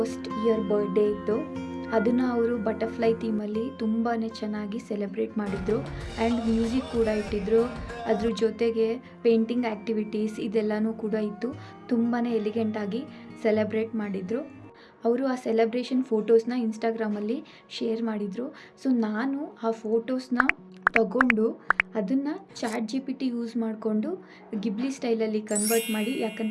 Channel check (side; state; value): both; identical; correlation 1.00